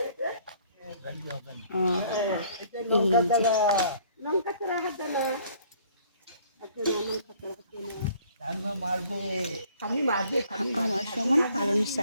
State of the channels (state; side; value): inverted; both; correlation -0.58